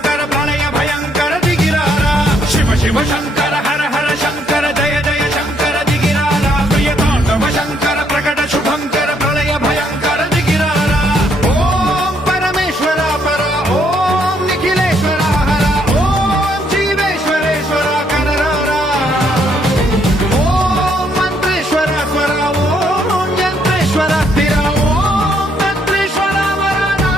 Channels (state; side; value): normal; both; correlation 0.71